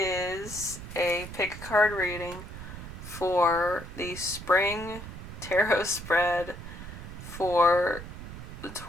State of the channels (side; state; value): right; noise; rumble, 11 dB below the sound